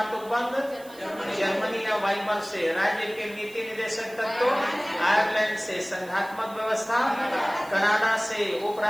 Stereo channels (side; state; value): right; noise; hiss, 22 dB below the sound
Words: उपबंध जर्मनी या वाइमर से। राज्य के नीति निदेशक तत्व आयरलैंड से। संघात्मक व्यवस्था कनाडा से।